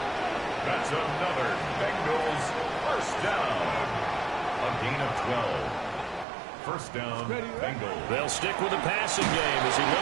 That's another Bengals first down. A gain of 12. First down, Bengals. They'll stick with the passing game as he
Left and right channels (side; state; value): left; drops out; at 6.2 s